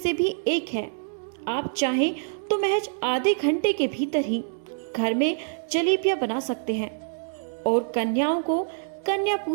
भी एक है। आप चाहें तो महज आधे घंटे के भीतर ही घर में जलेबियां बना सकते हैं और कन्याओं को कन्या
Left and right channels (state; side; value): silent; left; digital silence